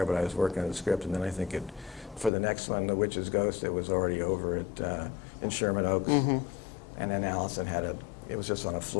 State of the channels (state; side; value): drops out; right; at 2.3 s